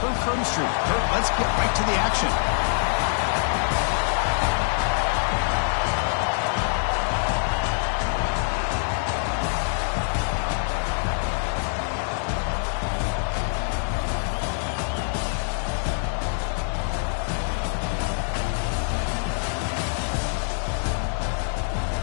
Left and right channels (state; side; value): silent; right; digital silence